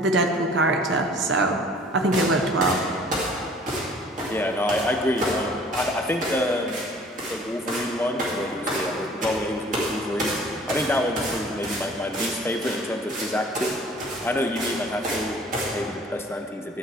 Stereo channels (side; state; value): both; normal; correlation 0.51